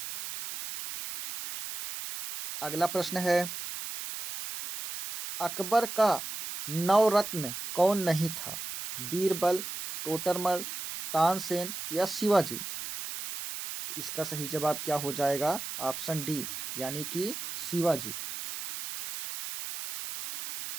अगला प्रश्न है, अकबर का नवरत्न कौन नहीं था? बीरबल, टोडरमल, तानसेन या शिवाजी? तो इसका सही जवाब क्या हो जाएगा? ऑप्शन डी, यानी कि शिवाजी।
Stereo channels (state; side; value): noise; right; hiss, 7 dB below the sound